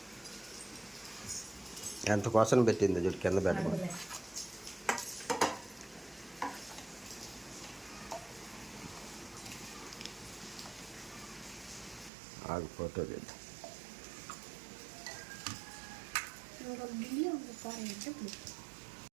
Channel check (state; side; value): drops out; left; at 12.1 s